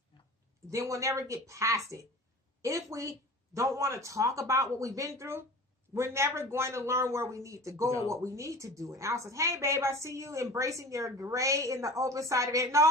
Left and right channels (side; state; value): both; normal; correlation 0.39